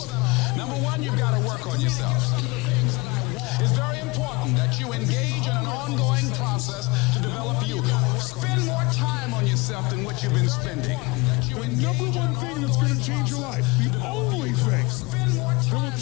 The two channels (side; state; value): right; quieter; 25.4 dB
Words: Number one, you've got to work on yourself. It's very important that you engage in an ongoing process to develop you. Spend more time on yourself than what you've been spending. The number one thing that's going to change your life, the only thing that will